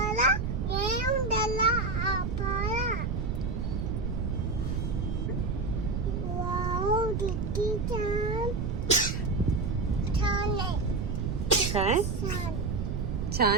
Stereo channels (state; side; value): noise; right; rumble, 1 dB below the sound